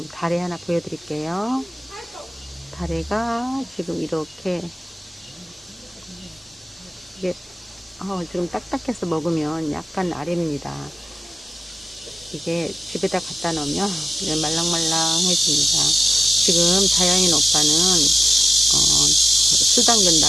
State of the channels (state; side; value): normal; both; correlation 0.93